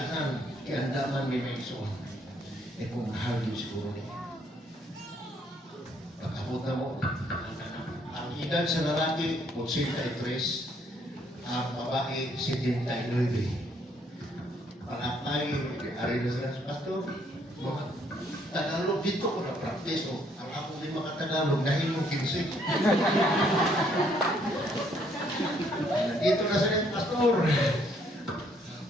kiandaman may maison. E kung mahal yun siguro niya. Pagkabot na mo, ang edad sa lalaki, 83, ang babae, 79. Pangapay, ari na sila sa Pastor, mga Tagalog dito ko na-practice. Ang ako din mga Tagalog dahil yung 15. Dito na sila, Pastor.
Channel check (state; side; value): normal; both; correlation 0.67